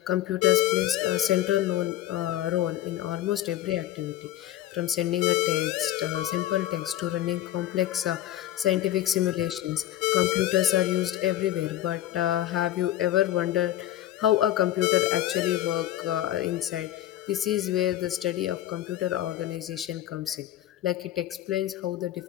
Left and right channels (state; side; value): quieter; right; 13.1 dB